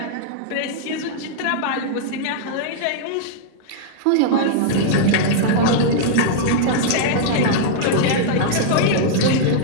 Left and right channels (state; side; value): different; both; correlation -0.01